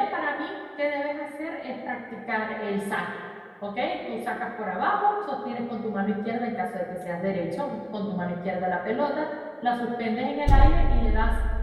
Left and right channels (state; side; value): identical; both; correlation 1.00